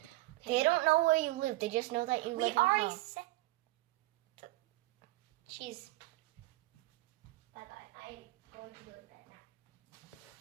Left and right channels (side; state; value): left; quieter; 19.7 dB